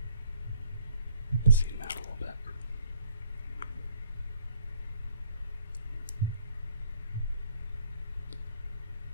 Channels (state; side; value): inverted; both; correlation -0.59